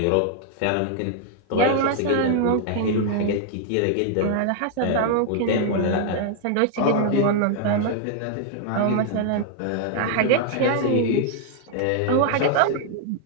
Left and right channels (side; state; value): both; different; correlation 0.00